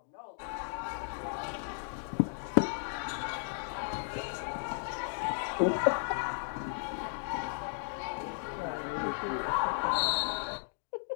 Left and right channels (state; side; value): silent; right; digital silence